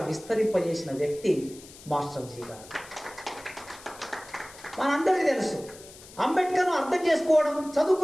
విస్తరింపజేసిన వ్యక్తి మాస్టర్ జీ గారు. మనందరికీ తెలుసు, అంబేద్కర్ను అర్థం చేసుకోవడం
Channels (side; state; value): left; noise; hiss, 19 dB below the sound